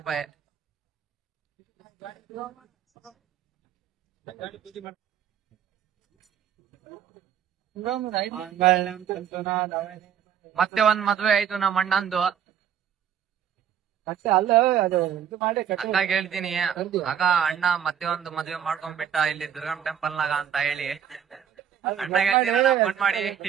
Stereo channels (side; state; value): left; quieter; 8.9 dB